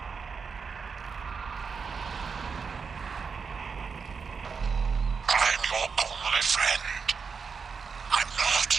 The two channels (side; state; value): left; quieter; 5.5 dB